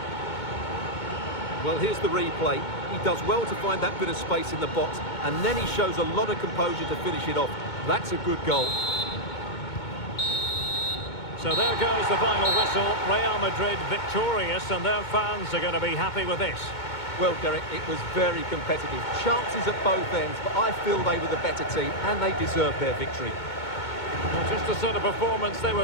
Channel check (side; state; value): right; late; 2.2 ms